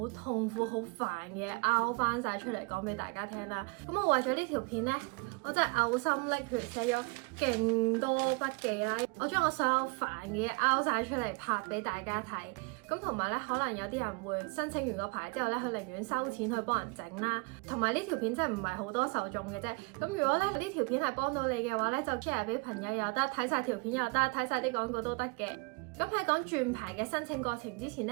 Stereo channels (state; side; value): quieter; left; 30.9 dB